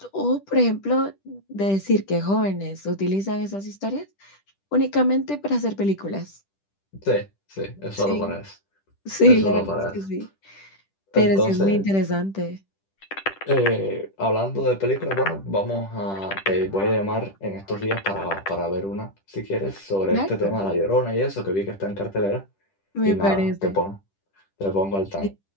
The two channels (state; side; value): late; right; 10 ms